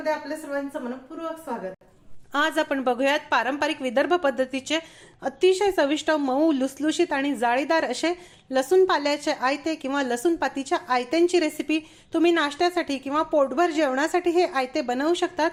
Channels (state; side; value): identical; both; correlation 1.00